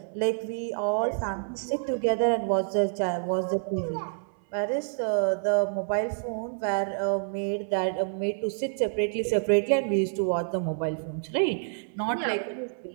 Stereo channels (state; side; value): silent; left; 59 dB below the other